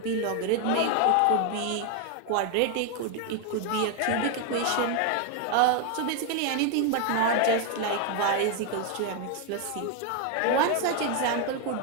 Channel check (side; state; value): both; different; correlation 0.01